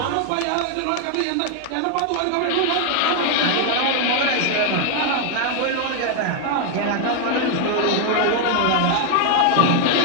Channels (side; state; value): both; different; correlation 0.00